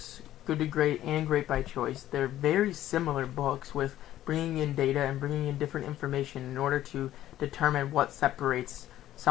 Good to Great and Great by Choice, they're very similar books with bringing in data and bringing in different information in order to determine what separates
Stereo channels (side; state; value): right; quieter; 13.2 dB